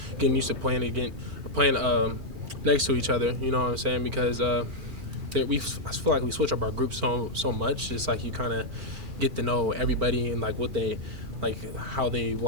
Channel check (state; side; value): late; left; 2.4 ms